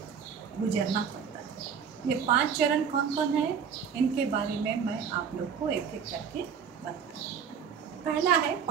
गुजरना पड़ता है। ये 5 चरण कौन कौन है, इनके बारे में मैं आप लोग को एक एक करके बताऊँ। पहला है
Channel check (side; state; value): left; quieter; 7.1 dB